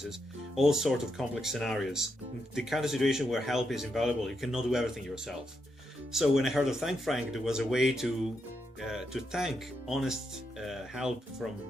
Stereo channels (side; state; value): both; normal; correlation 0.82